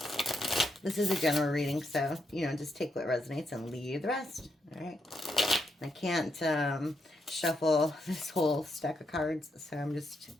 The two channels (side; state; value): both; normal; correlation 0.81